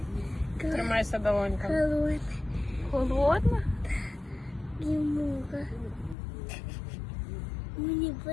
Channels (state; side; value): drops out; right; at 6.2 s